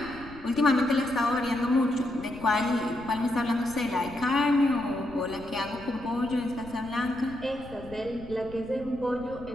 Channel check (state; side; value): noise; left; rumble, 18 dB below the sound